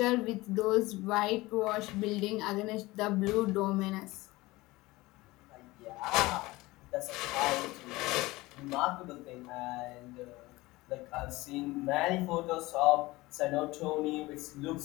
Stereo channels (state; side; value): quieter; right; 20.3 dB